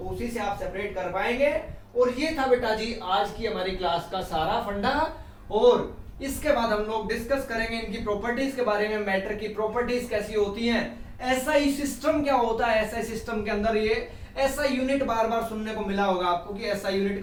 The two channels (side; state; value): both; identical; correlation 1.00